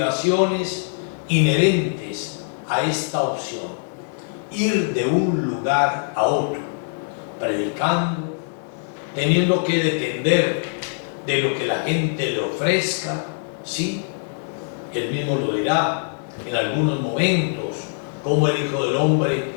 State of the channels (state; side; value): silent; right; 59 dB below the other